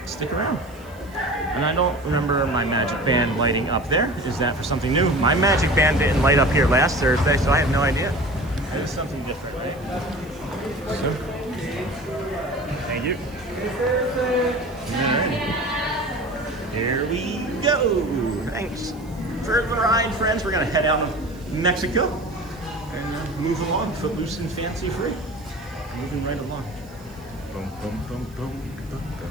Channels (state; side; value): noise; right; hiss, 27 dB below the sound